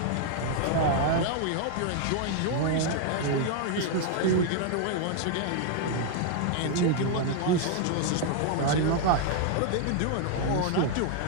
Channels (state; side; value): different; both; correlation 0.00